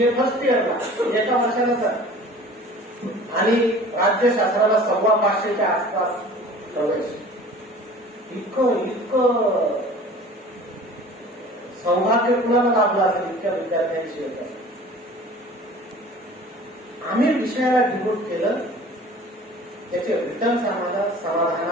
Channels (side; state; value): both; normal; correlation 0.44